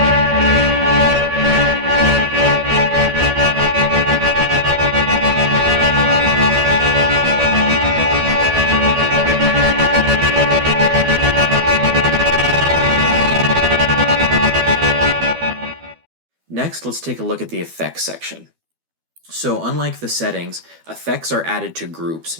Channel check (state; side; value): late; left; 12 ms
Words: Next, let's take a look at the effects section. So unlike the settings, effects are added to groups,